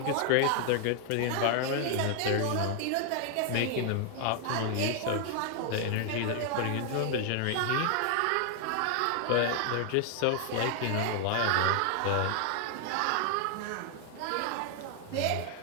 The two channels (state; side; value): different; both; correlation 0.00